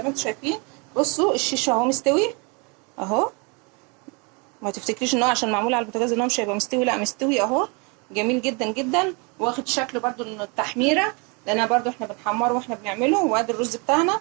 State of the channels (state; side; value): quieter; left; 31.5 dB